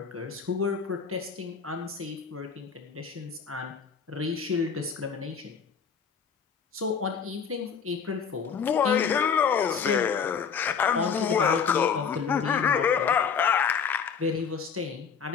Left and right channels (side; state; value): right; quieter; 6.5 dB